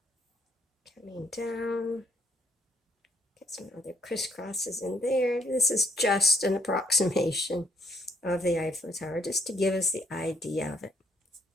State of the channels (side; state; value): both; normal; correlation 0.70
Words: coming down. Get some other crisscrosses in there. This is just an approximation of the Eiffel Tower, just to give us the idea of it.